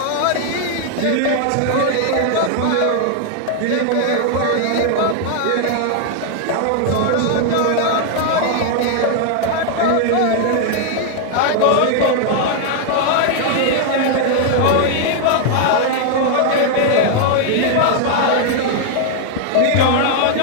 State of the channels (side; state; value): both; different; correlation 0.00